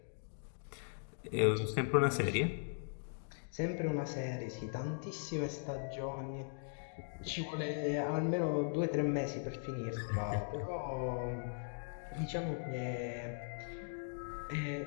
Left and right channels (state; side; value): silent; right; digital silence